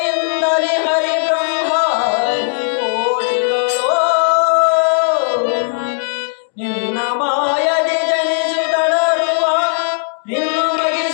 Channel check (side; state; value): right; silent; digital silence